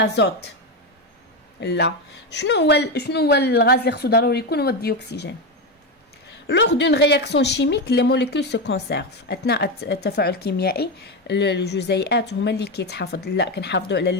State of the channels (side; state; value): both; normal; correlation 0.13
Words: لا شنو هو الغاز اللي خصو ضروري يكون هو الديوكسيجين. Lors d'une réaction chimique les molécules se conservent. اثناء التفاعل الكيميائي الجزيئات هما اللي كيتحافظ. لا كنحافظوا على